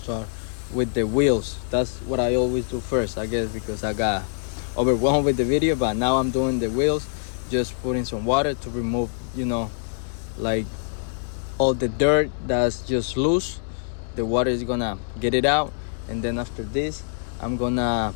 with the wheels. That's what I always do first, I guess, because I got overwhelmed with the video. But now I'm doing the wheels, just putting some water to remove, like all the dirt that's just loose. The water is gonna get it out, and then after this, I'm gonna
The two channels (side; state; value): right; silent; digital silence